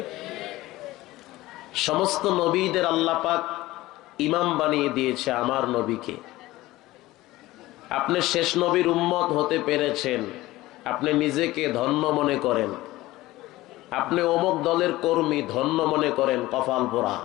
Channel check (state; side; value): quieter; right; 17.9 dB